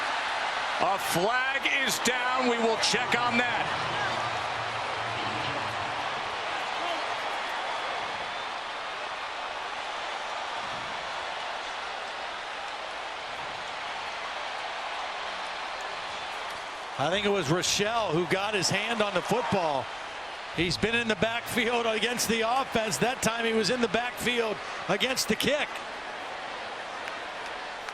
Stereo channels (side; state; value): right; noise; rumble, 27 dB below the sound